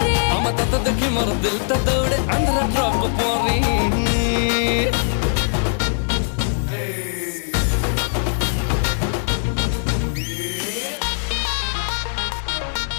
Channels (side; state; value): right; silent; digital silence